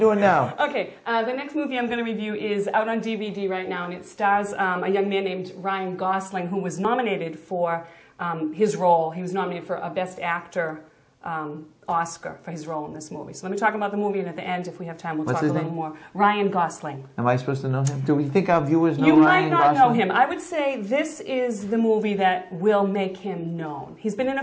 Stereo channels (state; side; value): identical; both; correlation 1.00